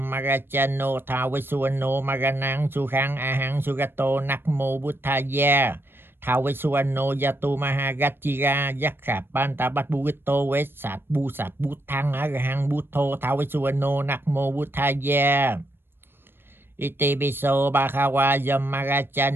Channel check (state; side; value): late; left; 0.10 ms